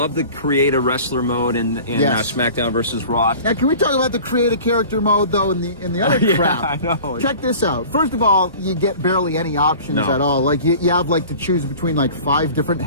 the create a wrestler mode in SmackDown versus Raw. Now, can we talk about the create a character mode, though, in the other crap? I know. Check this out. First of all, you get barely any options at all. Like, you have, like, to choose between, like, 5 different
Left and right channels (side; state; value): both; inverted; correlation -0.42